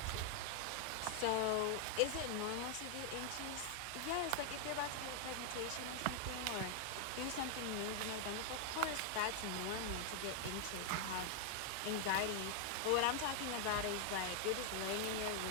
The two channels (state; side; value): different; both; correlation 0.00